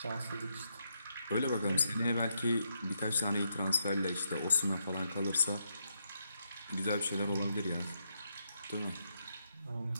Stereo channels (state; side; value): inverted; both; correlation -0.80